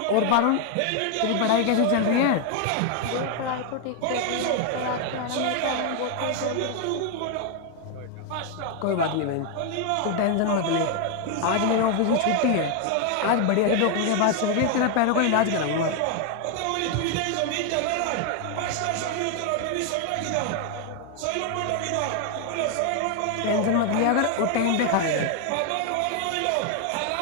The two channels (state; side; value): different; both; correlation 0.00